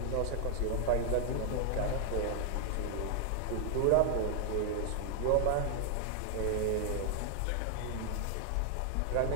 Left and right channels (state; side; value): different; both; correlation 0.00